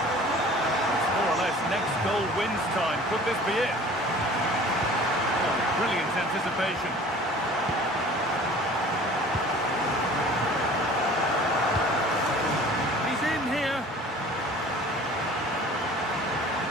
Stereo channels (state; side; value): normal; both; correlation 0.46